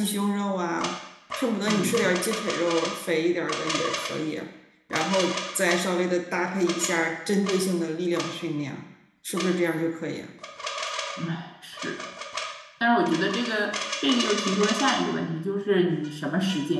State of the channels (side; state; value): both; identical; correlation 1.00